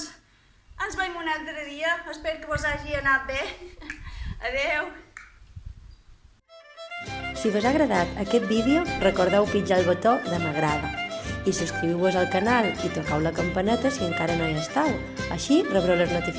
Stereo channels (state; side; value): identical; both; correlation 1.00